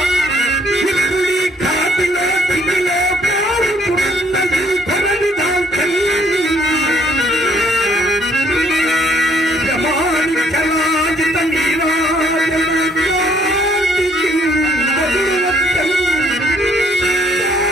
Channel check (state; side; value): normal; both; correlation 0.65